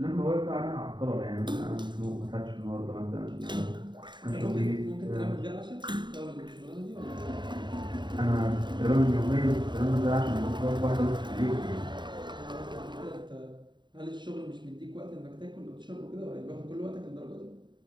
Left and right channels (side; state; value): left; late; 0.22 ms